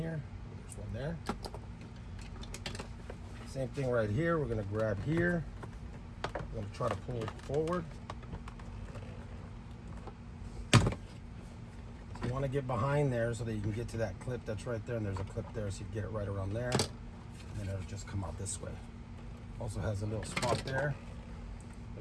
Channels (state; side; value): identical; both; correlation 1.00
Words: There's one there. Same thing right here. We're going to grab here. We're going to try to pull it forward. So you want to get behind there so that you can get to that clip that's right there. And there's a clip there, so you get it right around there. And then it'll just come out this way. Also has a little spot there.